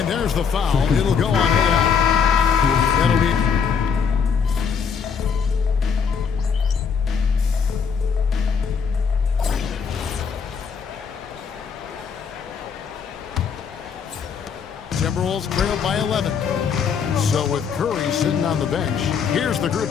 there's the foul. It'll go on AI. That'll be... Timberwolves trailed by 11. So with Curry sitting on the bench, here's the group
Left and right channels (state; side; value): quieter; right; 6.4 dB